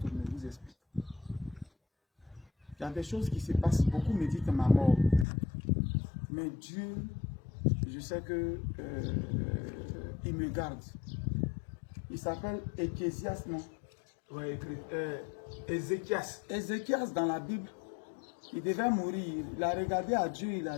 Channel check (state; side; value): drops out; right; at 5.2 s